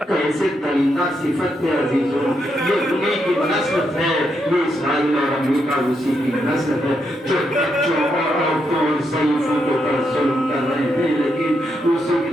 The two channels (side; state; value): both; normal; correlation 0.80